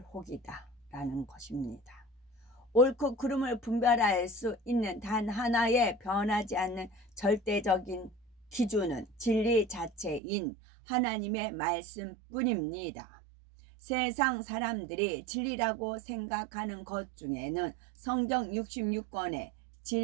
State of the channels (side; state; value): left; drops out; at 10.2 s